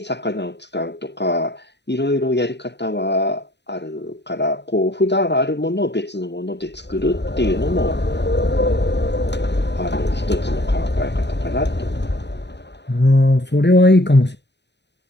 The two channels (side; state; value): right; late; 0.50 ms